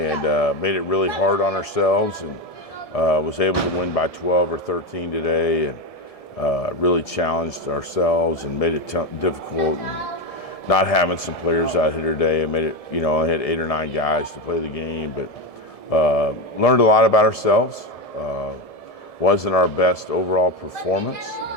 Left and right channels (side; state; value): right; late; 1.7 ms